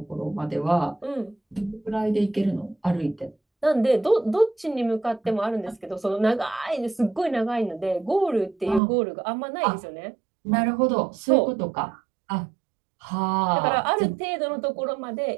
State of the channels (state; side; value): drops out; left; at 8.8 s